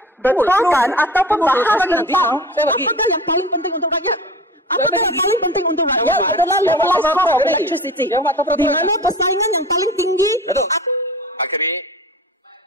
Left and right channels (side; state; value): both; normal; correlation 0.37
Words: ataupun bahas tentang apakah yang paling penting untuk rakyat. Apakah yang paling penting untuk rakyat adalah levelized cost of electricity, di mana persaingan yang paling tinggi. Bakri,